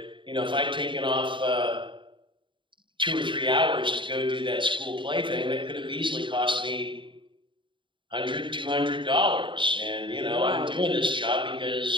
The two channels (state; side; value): late; left; 0.24 ms